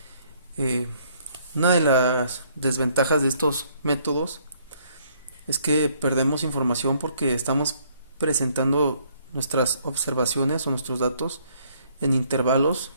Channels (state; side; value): inverted; both; correlation -0.65